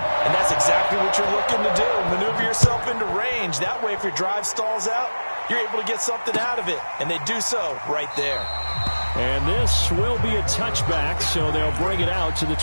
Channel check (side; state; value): both; inverted; correlation -1.00